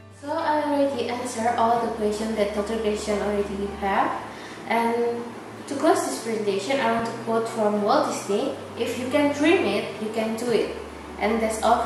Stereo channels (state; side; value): identical; both; correlation 1.00